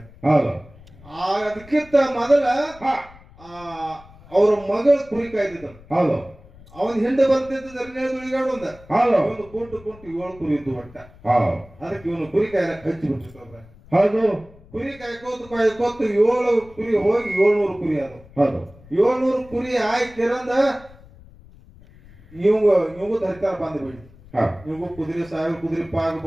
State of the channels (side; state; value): left; noise; rumble, 23 dB below the sound